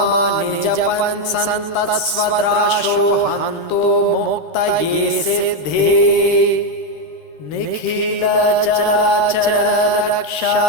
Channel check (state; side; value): late; right; 13 ms